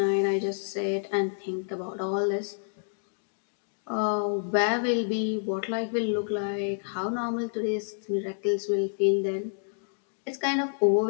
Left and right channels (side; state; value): right; silent; digital silence